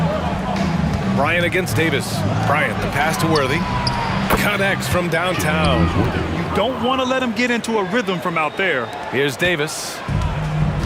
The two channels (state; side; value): identical; both; correlation 1.00